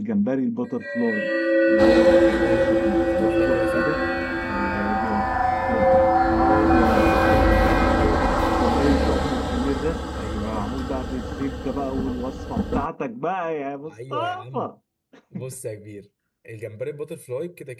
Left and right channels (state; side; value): identical; both; correlation 1.00